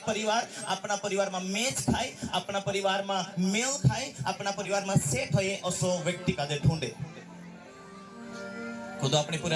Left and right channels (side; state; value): both; identical; correlation 1.00